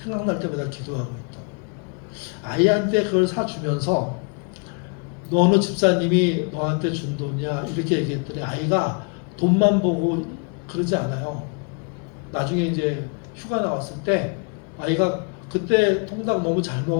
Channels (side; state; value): right; quieter; 36.1 dB